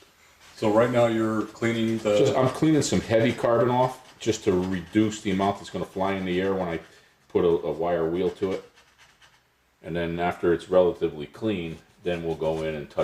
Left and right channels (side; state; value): both; identical; correlation 1.00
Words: So right now you're cleaning the... I'm cleaning some heavy carbon off just to reduce the amount that's going to fly in the air when I put a wire wheel to it. And then after it's relatively clean, then we'll go in and